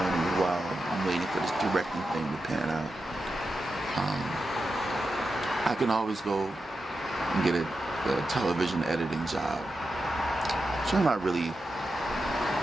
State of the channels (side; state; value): both; normal; correlation 0.89